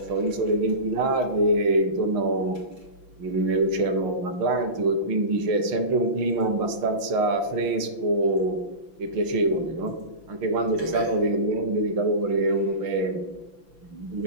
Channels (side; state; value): left; late; 5.9 ms